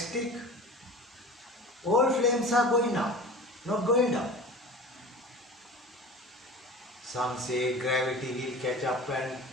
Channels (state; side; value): normal; both; correlation 0.37